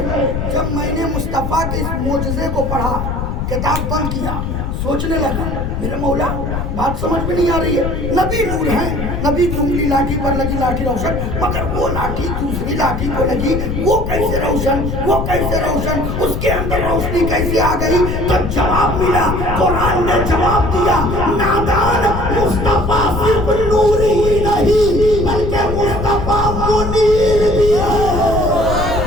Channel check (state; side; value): noise; left; rumble, 3 dB below the sound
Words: जब मैंने मुस्तफा के इस मोजज़े को पढ़ा, किताब बंद किया, सोचने लगा मेरे मौला बात समझ में नहीं आ रही है, नबी नूर है, नबी की उंगली लाठी पर लगी, लाठी रोशन, मगर वो लाठी दूसरी लाठी को लगी, वो कैसे रोशन, वो कैसे रोशन, उसके अंदर रोशनी कैसे आ गई। तो जवाब मिला, कुरान ने जवाब दिया, नादान मुस्तफा सिर्फ नूर ही नहीं बल्कि मुस्तफा मुनीर भी है।